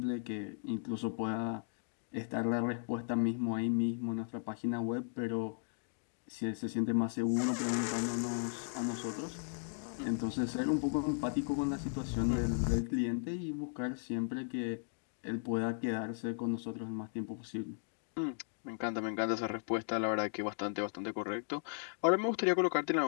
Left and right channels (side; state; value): right; silent; digital silence